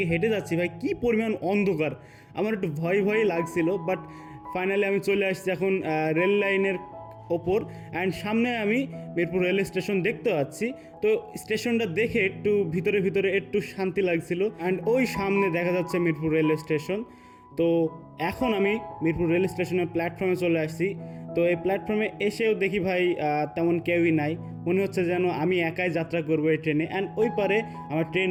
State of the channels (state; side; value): identical; both; correlation 1.00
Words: হেঁটে যাচ্ছি ভাই, কী পরিমাণ অন্ধকার, আমার একটু ভয় লাগছিল। বাট ফাইনালি আমি চলে আসছি এখন রেল লাইনের ওপর, অ্যান্ড সামনে আমি মিরপুর রেলওয়ে স্টেশন দেখতে পাচ্ছি। তো স্টেশনটা দেখে একটু ভিতরে একটু শান্তি লাগছিল। অ্যান্ড ওই সামনে দেখা যাচ্ছে মিরপুর রেলওয়ে স্টেশন। তো এখন আমি মিরপুর রেল স্টেশনের প্ল্যাটফর্মে চলে আসছি। তো এই প্ল্যাটফর্মে এসেও দেখি ভাই তেমন কেউই নাই, মনে হচ্ছে যেন আমি একাই যাত্রা করবো এই ট্রেনে। অ্যান্ড ওই পারে আমার ট্রেন